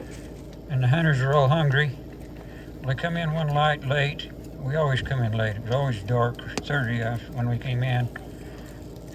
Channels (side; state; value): both; identical; correlation 1.00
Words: and the hunters are all hungry. Well, they come in one light late. We always come in late. It was always dark, 30 when we came in.